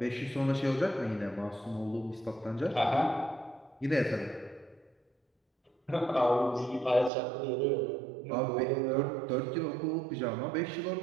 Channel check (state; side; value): drops out; left; at 7.1 s